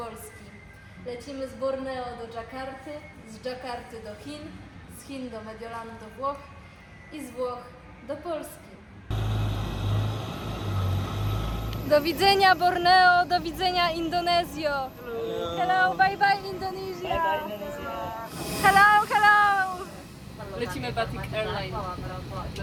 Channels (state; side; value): identical; both; correlation 1.00